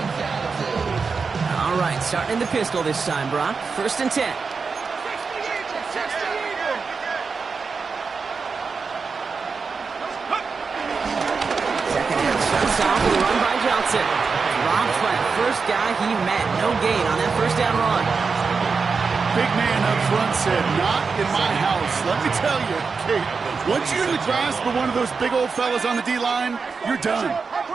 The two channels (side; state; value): left; quieter; 5.0 dB